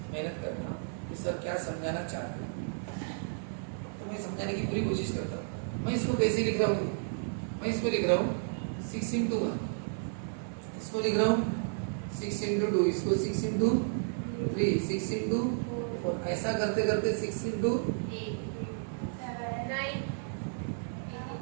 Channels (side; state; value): left; silent; 56 dB below the other